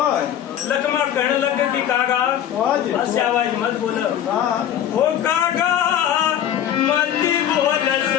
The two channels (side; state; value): right; quieter; 10.4 dB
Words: लखमा कहने लगे कि कागा ऐसे आवाज मत बोलो ओ कागा मत बोल